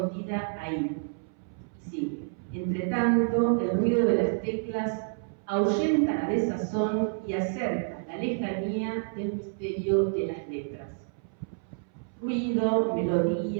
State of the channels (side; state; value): left; silent; 59 dB below the other